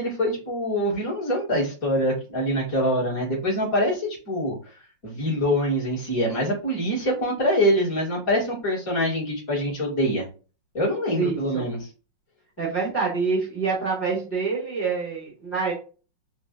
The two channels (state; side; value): late; right; 5.5 ms